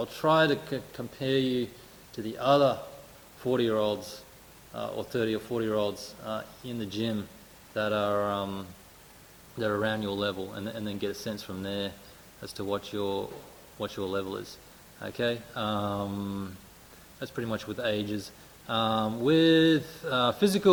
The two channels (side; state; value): both; identical; correlation 1.00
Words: try to compare you to the other 40-year-olds or 30 or 40-year-olds in the gym that are around your level, and then get a sense from there as to what your level is. Okay, that's pretty much with ages. With